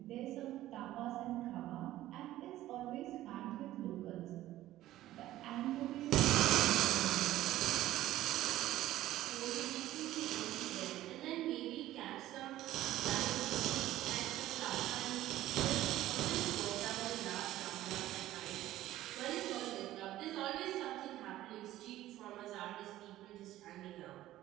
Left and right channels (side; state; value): left; quieter; 14.7 dB